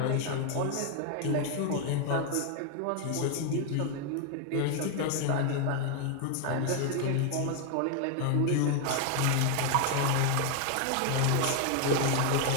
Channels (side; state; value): both; different; correlation 0.00